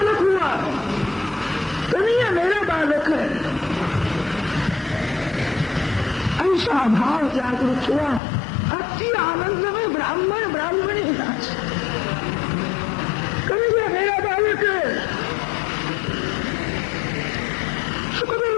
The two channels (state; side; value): drops out; right; at 8.2 s